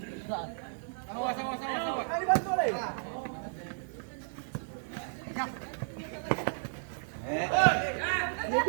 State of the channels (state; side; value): silent; left; digital silence